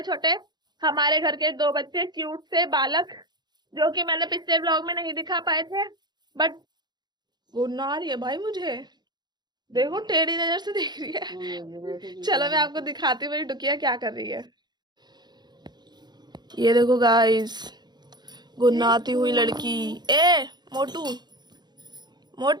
छोटे हमारे घर के 2 बच्चे, क्यूट से बालक, जो कि मैंने पिछले ब्लॉग में नहीं दिखा पाए थे। बट गुन्ना आ रही है भाई मुझे, देखो टेढ़ी नजर से देख रही है। चलो मैं आपको दिखाती हूँ मेरी डुकिया क्या कर रही है। ये देखो गाइस, गुन्नाती हुई लड़की। ए मोटू,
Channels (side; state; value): left; late; 0.21 ms